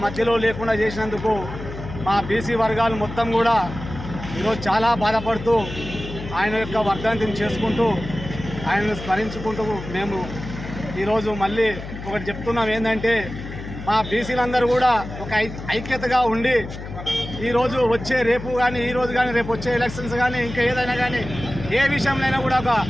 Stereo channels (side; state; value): left; noise; hum, 10 dB below the sound